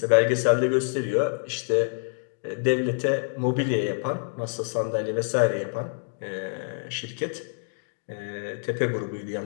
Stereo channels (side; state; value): right; silent; digital silence